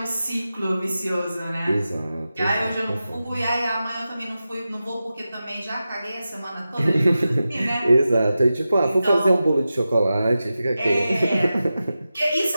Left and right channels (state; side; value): inverted; both; correlation -0.92